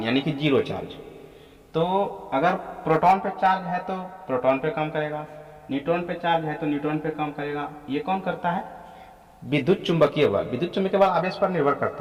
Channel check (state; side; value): identical; both; correlation 1.00